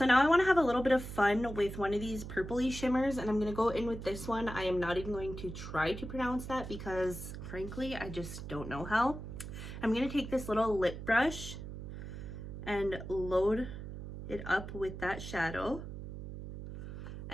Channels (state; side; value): noise; right; hum, 9 dB below the sound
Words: now I want to have a little bit of fun with one of these purpley shimmers, and I'm going to go in with this one. I am not even going to try to pronounce that because frankly I just don't know how. I'm going to take this little lip brush and load it up with that shadow,